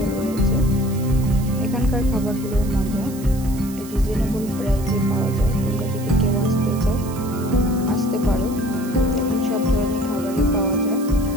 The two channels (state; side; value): noise; right; hiss, 17 dB below the sound